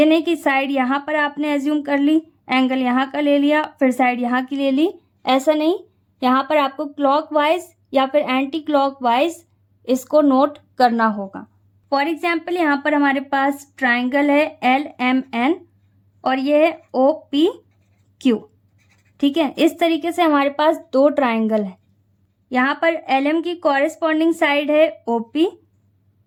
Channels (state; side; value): identical; both; correlation 1.00